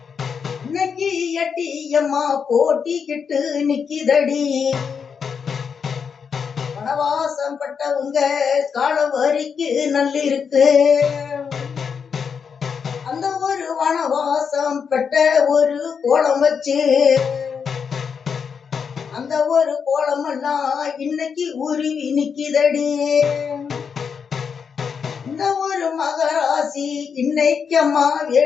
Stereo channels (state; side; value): quieter; right; 6.4 dB